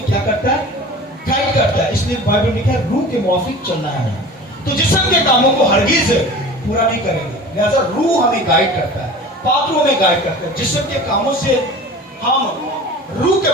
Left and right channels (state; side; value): normal; both; correlation 0.39